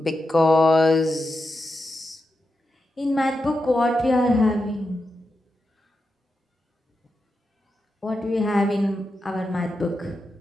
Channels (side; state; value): both; normal; correlation 0.88